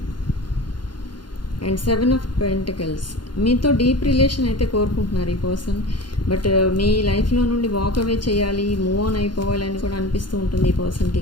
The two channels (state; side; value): late; right; 0.71 ms